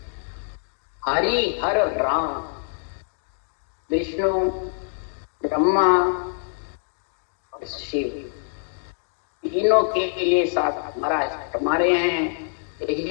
हरि हर राम, विष्णु, ब्रह्मा और शिव, तीनों के लिए साथ महाराज हमारे हैं।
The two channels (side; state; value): right; silent; digital silence